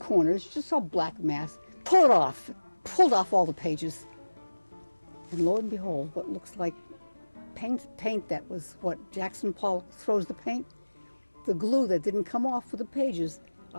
corners. You just saw black mass. Pull it off. Pulled off all the pages. And lo and behold, what looks like paint that was what Jackson Pollock throws the paint. The glue that didn't come off for the pages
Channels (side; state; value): both; inverted; correlation -1.00